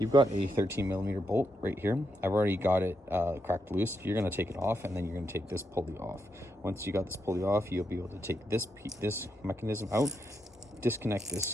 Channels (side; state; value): both; normal; correlation 0.82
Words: got a 13mm bolt right here. I've already got it cracked loose. You're going to take it off, and then you're going to take this pulley off. Once you got this pulley off, you'll be able to take this mechanism out, disconnect this